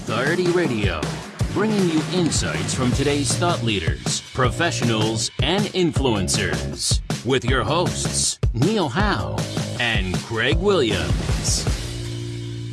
Radio, bringing you insights from today's thought leaders, professionals, and influencers. With your hosts, Neil Howe and Craig Williams.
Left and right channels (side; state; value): both; identical; correlation 1.00